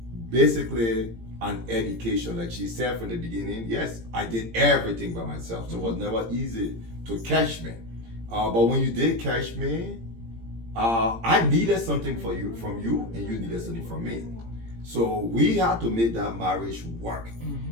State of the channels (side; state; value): left; late; 17 ms